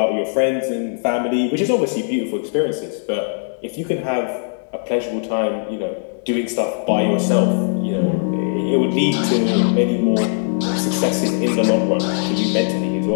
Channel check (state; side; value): silent; right; 66 dB below the other